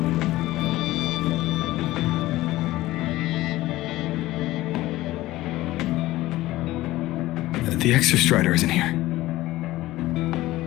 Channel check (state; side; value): quieter; right; 17.2 dB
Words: The Exostrider isn't here.